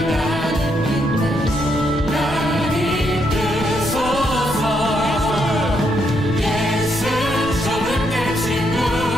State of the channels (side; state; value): left; noise; rumble, 10 dB below the sound